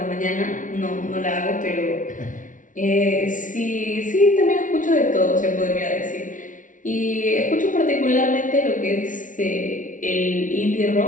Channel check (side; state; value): right; late; 0.38 ms